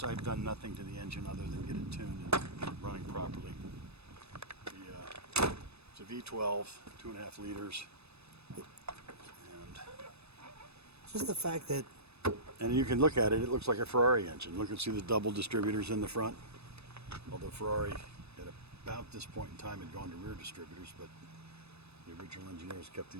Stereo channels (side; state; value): left; late; 0.79 ms